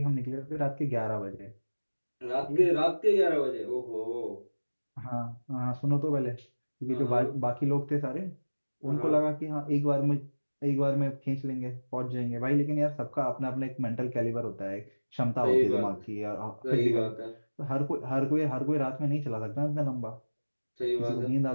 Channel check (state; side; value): inverted; both; correlation -1.00